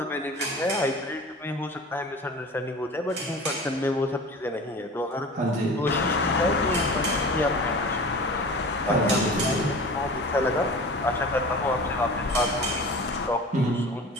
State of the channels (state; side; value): normal; both; correlation 0.38